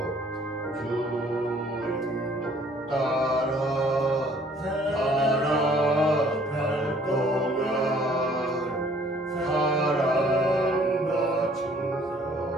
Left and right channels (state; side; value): normal; both; correlation 0.58